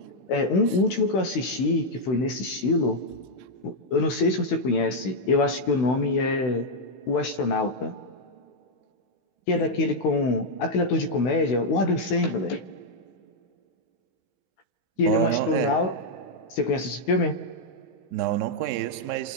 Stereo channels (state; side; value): late; right; 16 ms